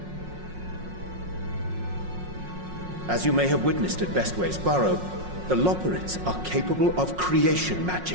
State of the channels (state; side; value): late; left; 5.5 ms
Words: As you may have witnessed at Bestway's Burrow, the Loperids are capable of creation